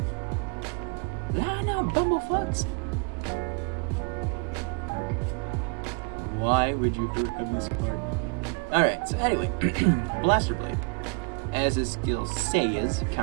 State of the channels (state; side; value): quieter; left; 36.0 dB